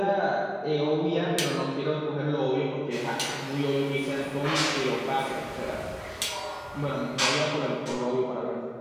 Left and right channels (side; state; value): both; identical; correlation 1.00